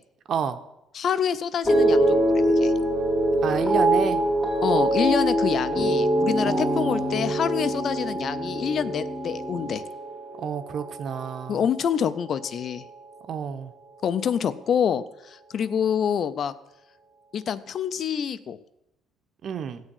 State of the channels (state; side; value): normal; both; correlation 0.75